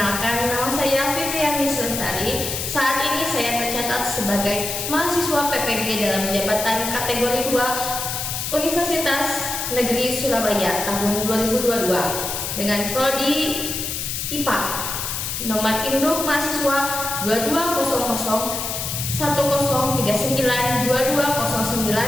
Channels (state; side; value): noise; left; hiss, 3 dB below the sound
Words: nama saya Fitriani Lestari. Saat ini saya tercatat sebagai mahasiswa PPG dalam jabatan kategori 2 Universitas Negeri Surabaya tahun 2022 dengan prodi IPA. Nomor induk mahasiswa 2200